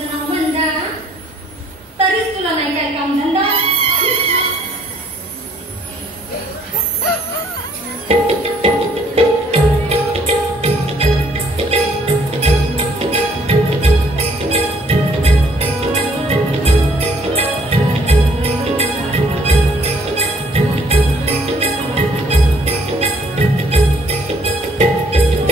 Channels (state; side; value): normal; both; correlation 0.62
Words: नाव वंदा तरीच तुला नाही काय काम धंदा.